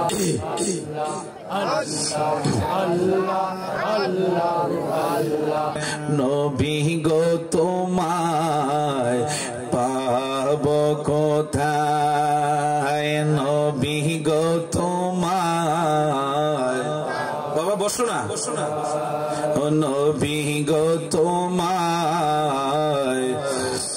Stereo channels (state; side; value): identical; both; correlation 1.00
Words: अल्लाह নবী গো তোমায় পাব কোথায়, নবী গো তোমায়। বাবা বসো না, ও নবী গো তোমায়।